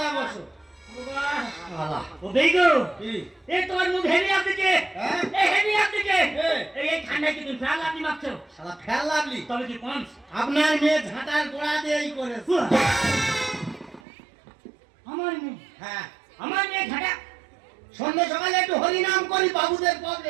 বসো শালা ও বেগো কি এই তোমার মুখ হেভি আপনিকে হ্যাঁ এই হেভি আপনিকে এ। এই ঠান্ডায় কি তুমি ফ্যান আপনি মারছো শালা ফেল লাগলি তবে কি কম আপনার মেয়ে ঝাঁটার গোড়া দিয়েই করেছে আমার মেয়ে হ্যাঁ আমার মেয়ে ঘাটা সন্ধ্যে সকালে একটু হরিনাম করি বাবুদের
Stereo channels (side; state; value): left; drops out; at 14.0 s